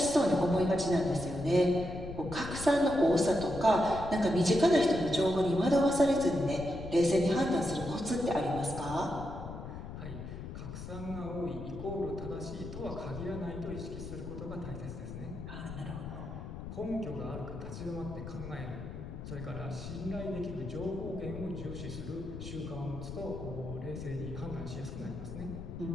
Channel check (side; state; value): left; noise; rumble, 9 dB below the sound